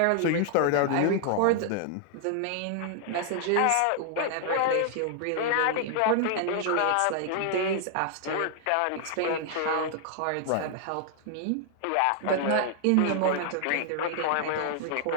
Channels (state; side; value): different; both; correlation 0.00